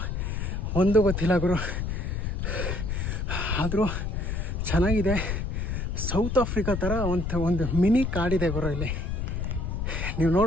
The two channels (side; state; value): left; noise; rumble, 2 dB below the sound